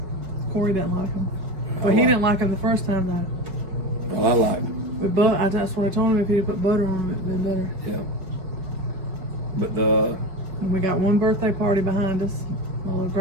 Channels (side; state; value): left; late; 5.3 ms